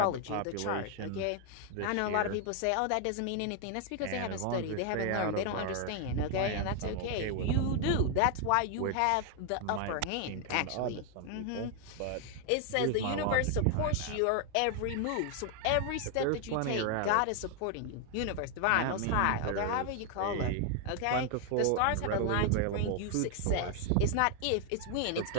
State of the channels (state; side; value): different; both; correlation 0.00